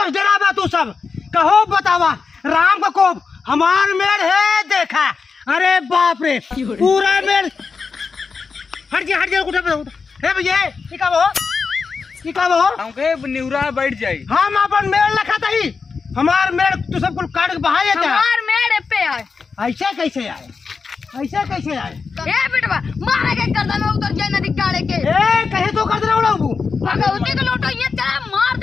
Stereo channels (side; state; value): right; quieter; 5.0 dB